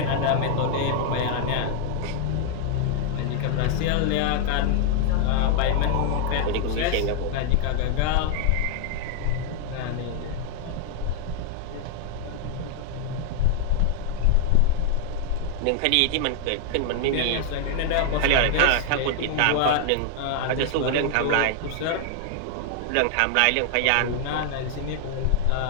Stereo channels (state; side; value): different; both; correlation 0.00